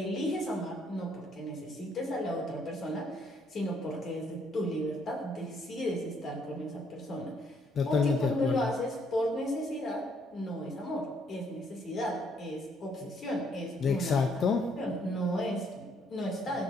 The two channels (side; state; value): both; normal; correlation 0.69